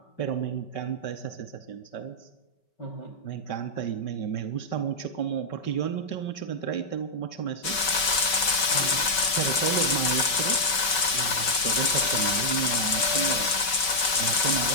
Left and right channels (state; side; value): late; right; 5.3 ms